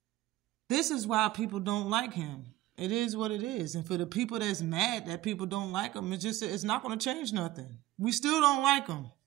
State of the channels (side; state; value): left; quieter; 15.9 dB